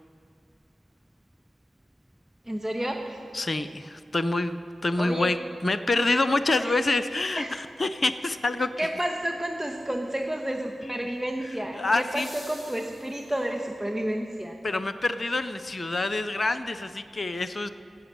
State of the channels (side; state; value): both; normal; correlation 0.94